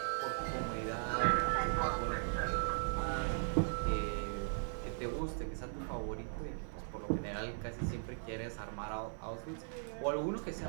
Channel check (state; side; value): silent; left; 52 dB below the other